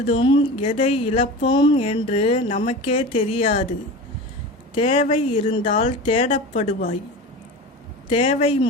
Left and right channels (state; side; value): normal; both; correlation 0.31